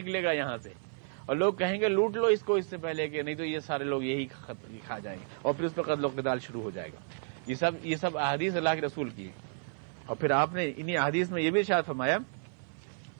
گا یہاں سے، اور لوگ کہیں گے لوٹ لو اس کو اس سے پہلے کہ نہیں تو یہ سارے لوگ یہی کھا جائیں گے، اور پھر اس پر قتل و قتال شروع ہو جائے گا. یہ سب احادیث اللہ کے رسول کی. اور پھر آپ نے انہی احادیث میں یہ بھی ارشاد فرمایا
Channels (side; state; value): left; silent; 57 dB below the other